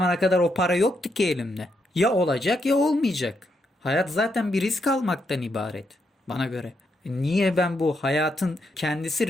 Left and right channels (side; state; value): both; normal; correlation 0.79